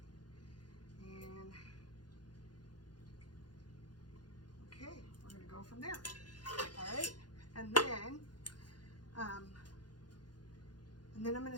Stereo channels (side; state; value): right; late; 0.70 ms